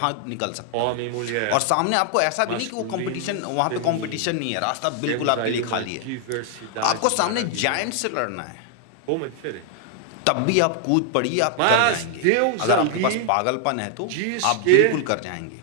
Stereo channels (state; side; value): different; both; correlation 0.00